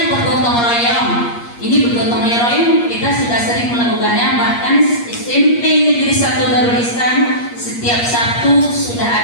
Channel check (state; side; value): late; right; 8.5 ms